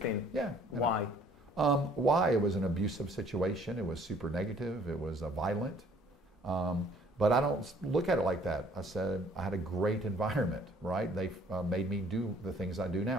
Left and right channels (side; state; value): both; normal; correlation 0.59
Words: Yeah. Why? Why? It was an abusive situation. It was super negative. It was violent. But I don't look at it like that. I said I had a great environment, right? They made me do the things I do